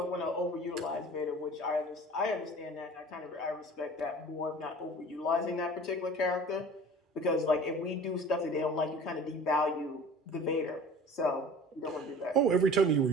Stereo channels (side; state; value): both; normal; correlation 0.43